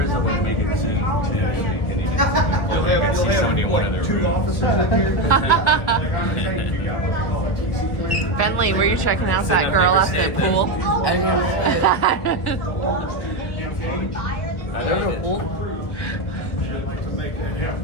is a way to make it zoom too, so you can even look, you can see somebody in one of their rooms. Bentley, were you checking out that girl at the pool? I remember pool.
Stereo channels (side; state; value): right; late; 1.4 ms